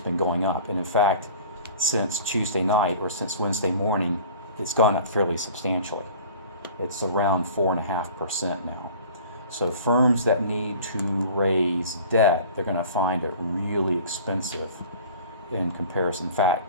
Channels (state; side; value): inverted; both; correlation -0.44